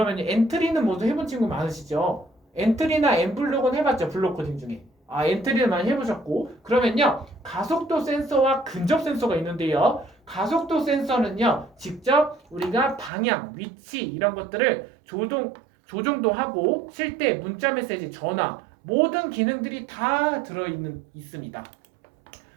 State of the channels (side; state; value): left; drops out; at 13.1 s